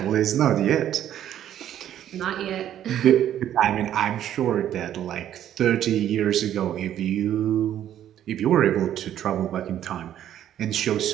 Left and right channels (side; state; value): left; quieter; 11.0 dB